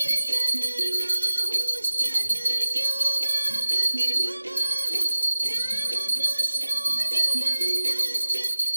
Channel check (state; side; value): inverted; both; correlation -1.00